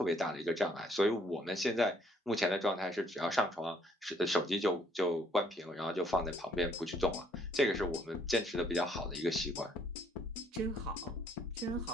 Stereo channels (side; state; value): both; normal; correlation 0.65